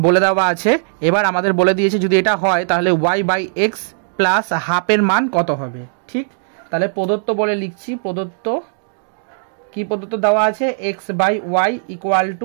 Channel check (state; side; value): silent; left; digital silence